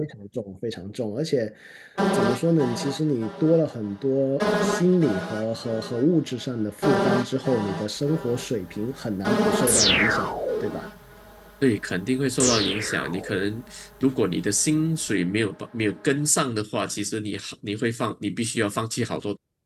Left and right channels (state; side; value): identical; both; correlation 1.00